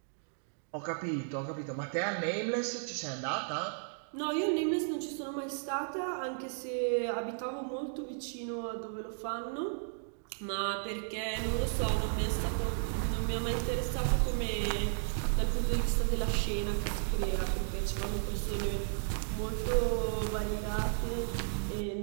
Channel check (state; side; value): silent; left; digital silence